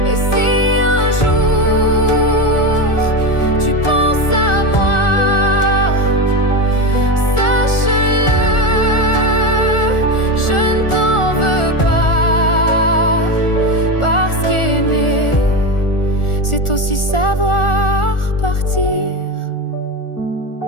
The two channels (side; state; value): right; late; 1.4 ms